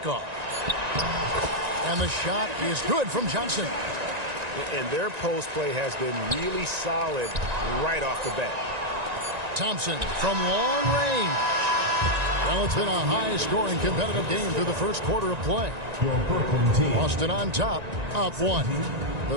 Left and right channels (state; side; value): late; left; 1.9 ms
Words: And the shot is good from Johnson. And their post play has been really solid right off the bat. Thompson from long range. Well, it's been a high-scoring competitive game through the first quarter of play. Boston on top, up 1.